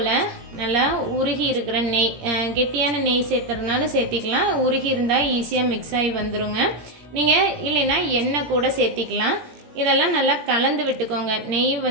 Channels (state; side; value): late; left; 17 ms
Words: நல்லா உருகி இருக்கிற நெய், கெட்டியான நெய் சேர்த்துறதுனால சேர்த்திக்கலாம். உருகி இருந்தால் ஈஸியாக மிக்ஸ் ஆகி வந்துடுங்க. நீங்கள் இல்லைன்னா எண்ணெய் கூட சேர்த்திக்கலாம். இதெல்லாம் நல்லா கலந்து விட்டுக்கோங்க. நெய்